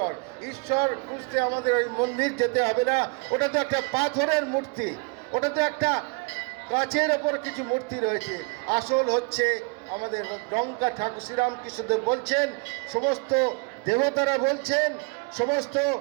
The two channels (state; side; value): quieter; left; 30.9 dB